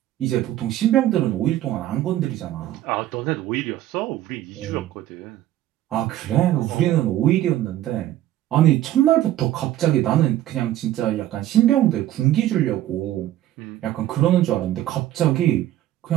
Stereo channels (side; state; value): left; quieter; 13.3 dB